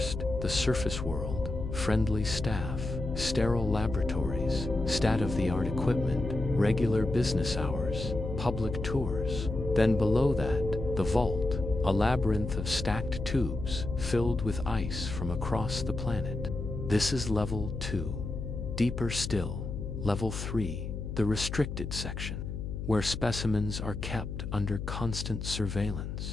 the surface world, friendly staff, sterile laboratories, state-of-the-art equipment, regular business hours, public tours. Then below that, the vault, a labyrinth of stacked tubes filled with ice from across the planet. This is level 2. Deeper still, level 3, the restricted section, where specimens are kept under constant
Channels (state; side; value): noise; left; hum, 6 dB below the sound